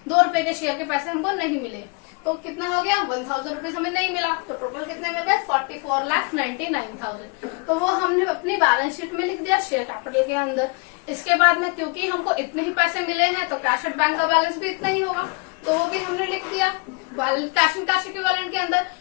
2 रुपए के शेयर के पैसे हमको नहीं मिले, तो कितना हो गया 1,000 रुपीज हमें नहीं मिला, तो टोटल कितने मिल गए 44,99,000। तो वो हमने अपनी बैलेंस शीट में लिख दिया शेयर कैपिटल के अंदर। इसके बाद में क्योंकि हमको इतने ही पैसे मिले हैं तो कैश एट बैंक का बैलेंस भी इतना ही होगा, तो वो भी हमने लिख दिया कैश एंड कैश इक्विवेलेंट के अंदर।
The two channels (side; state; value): right; quieter; 31.2 dB